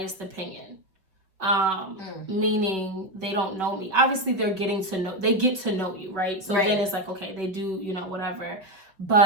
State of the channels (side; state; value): left; late; 5.3 ms